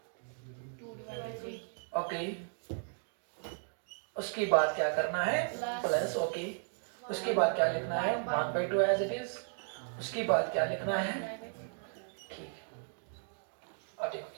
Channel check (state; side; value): silent; left; digital silence